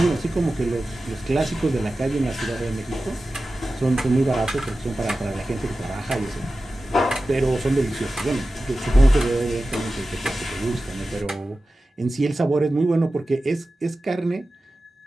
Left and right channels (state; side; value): normal; both; correlation 0.95